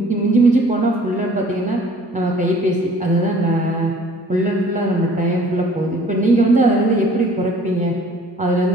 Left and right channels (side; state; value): both; normal; correlation 0.53